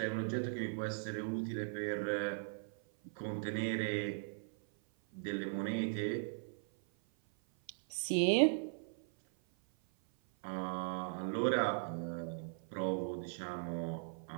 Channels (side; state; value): left; silent; 52 dB below the other